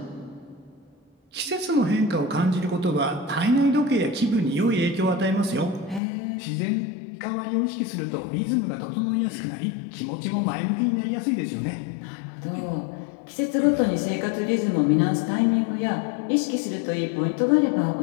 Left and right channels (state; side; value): drops out; right; at 6.0 s